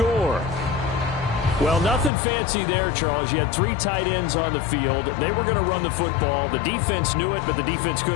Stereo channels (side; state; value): right; drops out; at 2.1 s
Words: Well, nothing fancy there, Charles. You had 3 tight ends on the field. They were going to run the football. The defense knew it, but the defense